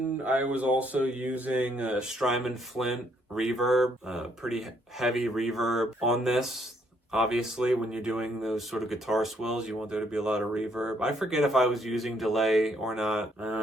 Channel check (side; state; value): both; normal; correlation 0.70